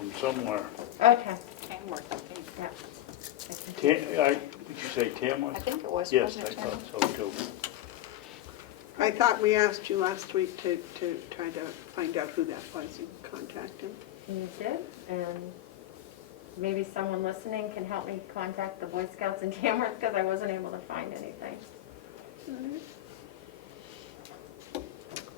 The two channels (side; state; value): right; quieter; 13.5 dB